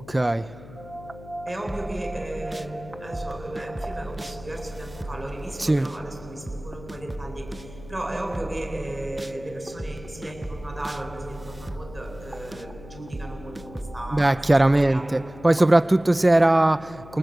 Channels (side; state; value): left; noise; hum, 17 dB below the sound